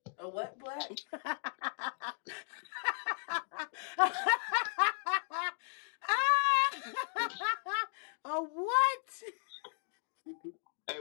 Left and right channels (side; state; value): right; silent; digital silence